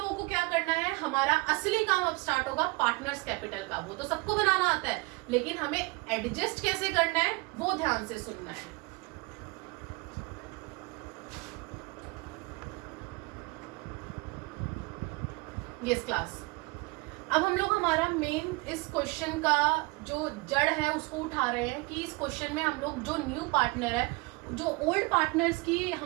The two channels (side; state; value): left; quieter; 26.3 dB